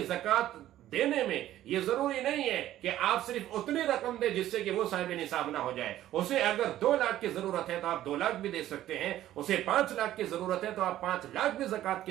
زکوٰۃ دینے میں یہ ضروری نہیں ہے کہ آپ صرف اتنی رقم دیں جس سے کہ وہ صاحب نصاب نہ ہو جائے۔ اسے اگر 2 لاکھ کی ضرورت ہے تو آپ 2 لاکھ بھی دے سکتے ہیں، اسے 5 لاکھ کی ضرورت ہے تو آپ 5 لاکھ بھی زکوٰۃ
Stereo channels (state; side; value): quieter; left; 13.3 dB